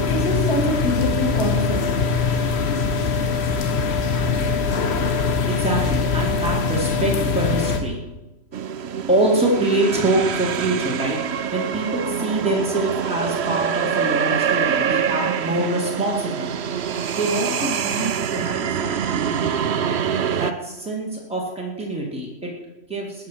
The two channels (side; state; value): right; late; 3.1 ms